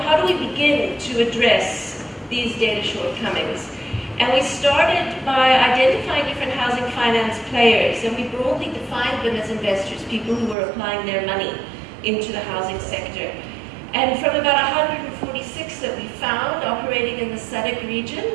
do we begin to address these data shortcomings? And we started by identifying different housing finance players, and we broadly defined them as investors, people who were applying their money into the housing sector. And from about 146 that we found operating in the SADC region,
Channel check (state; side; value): drops out; left; at 10.6 s